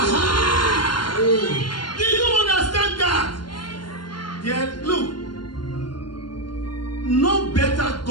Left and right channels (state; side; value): late; right; 0.71 ms